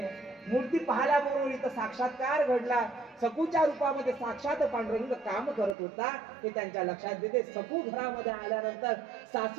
मूर्ती पाहिल्याबरोबर इथं साक्षात्कार घडला. सखूच्या रूपामध्ये साक्षात पांडुरंग काम करत होता हे त्यांच्या लक्षात येते. सखू घरामध्ये आल्यानंतर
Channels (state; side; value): drops out; left; at 5.8 s